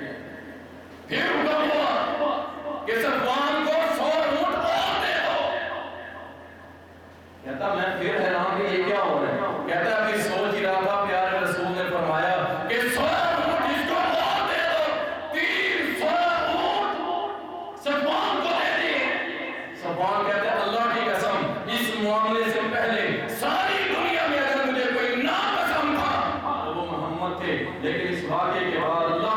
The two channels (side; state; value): both; identical; correlation 1.00